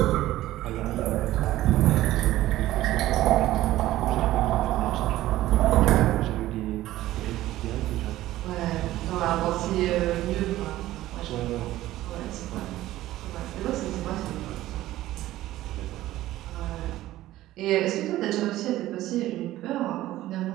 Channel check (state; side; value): quieter; left; 15.3 dB